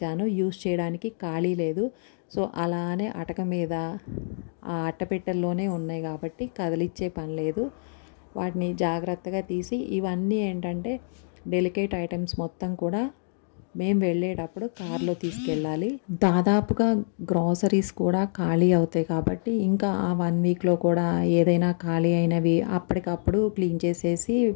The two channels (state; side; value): silent; right; digital silence